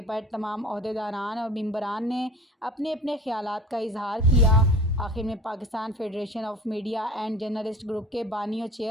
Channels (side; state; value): both; normal; correlation 0.42